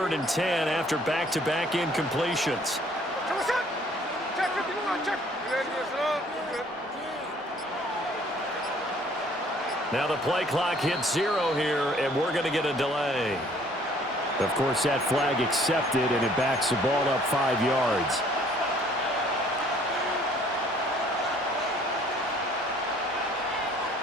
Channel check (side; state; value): both; normal; correlation 0.58